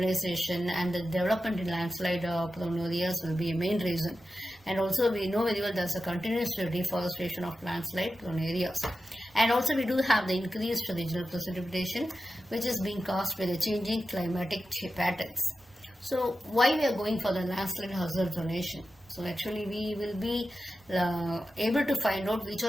and the development in landslide prone areas will be a main reason. And also we know very well there's a continuous deforestation of landslide prone areas. And also we do have the increased regional precipitation which is being caused by the changing climatic patterns. So why we are going for the landslide hazard zonation? So actually we will be able to find out which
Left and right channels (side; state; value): both; normal; correlation 0.92